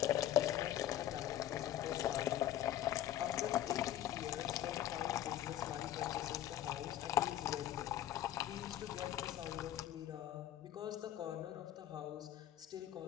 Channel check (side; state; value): right; quieter; 12.2 dB